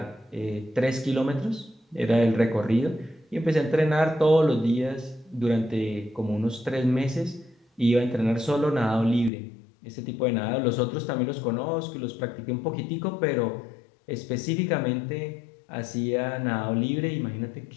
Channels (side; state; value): right; drops out; at 9.3 s